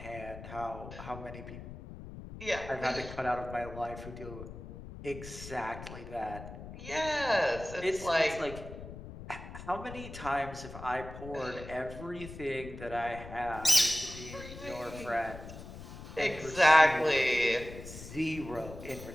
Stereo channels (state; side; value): noise; left; rumble, 12 dB below the sound